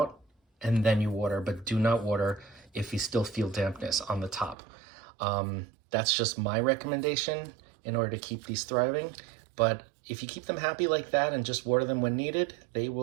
and then you water, but do not water if you still feel dampness on the top. That's just my recommendation in order to keep these thriving. But if you keep them happy like that and just water them when needed, they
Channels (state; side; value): drops out; left; at 4.5 s